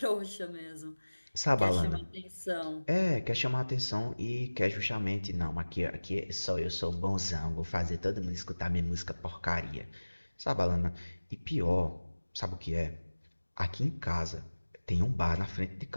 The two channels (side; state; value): both; inverted; correlation -1.00